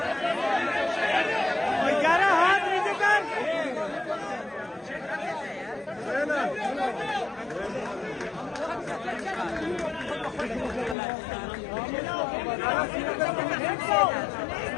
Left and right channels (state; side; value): drops out; right; at 11.0 s